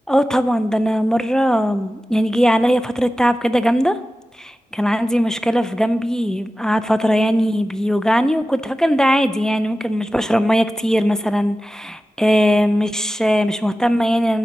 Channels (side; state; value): both; normal; correlation 0.95